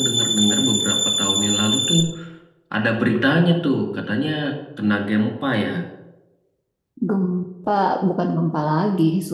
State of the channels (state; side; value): identical; both; correlation 1.00